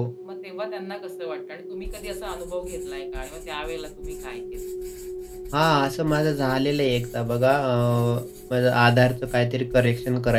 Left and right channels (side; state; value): both; identical; correlation 1.00